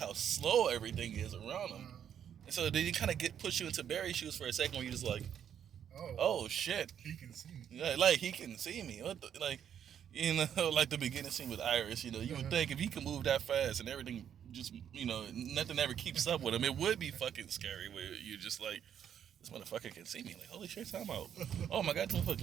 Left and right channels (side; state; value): left; quieter; 9.0 dB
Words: slow everything is around him. And so then you kind of push you into Barry's shoes for a second, where you're just like, oh shit, he can see me. Yeah, like he can see me. What the, like, like the beginning scene with Iris. You would think if he could move that fast and everything just, nothing ever keeps up with him, it would be fucking scary. Where you're just like, this motherfucker can see me. Like, holy shit, time out. Oh my god, this